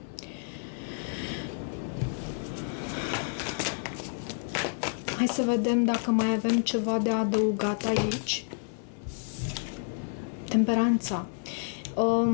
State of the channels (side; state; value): right; silent; 58 dB below the other